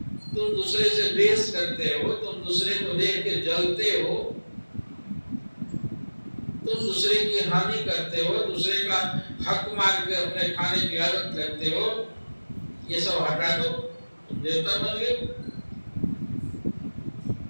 तुम दूसरे से द्वेष करते हो, तुम दूसरे को देख के जलते हो, तुम दूसरे की हानि करते हो, दूसरे का हक मार के अपने खाने की आदत करते हो। ये सब हटा दो, तुम देवता बन गए।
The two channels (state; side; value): inverted; both; correlation -1.00